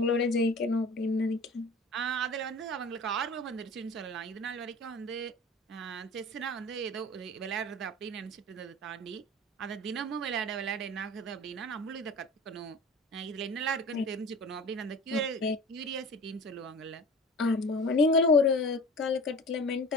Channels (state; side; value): normal; both; correlation 0.40